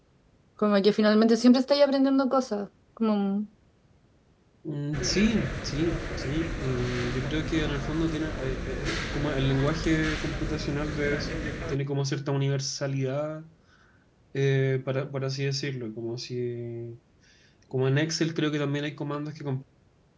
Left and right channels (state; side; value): identical; both; correlation 1.00